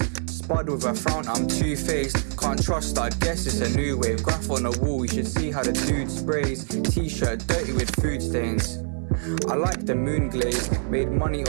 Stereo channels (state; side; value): silent; left; 58 dB below the other